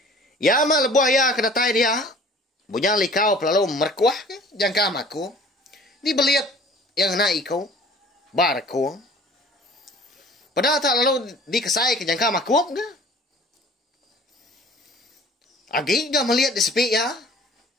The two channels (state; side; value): normal; both; correlation 0.48